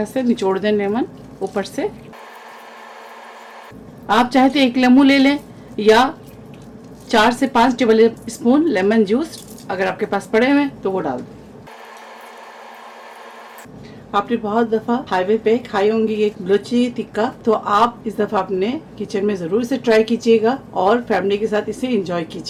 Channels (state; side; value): identical; both; correlation 1.00